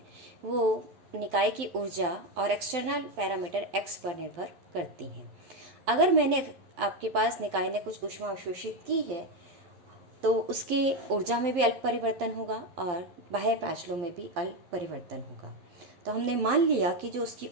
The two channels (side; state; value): left; late; 11 ms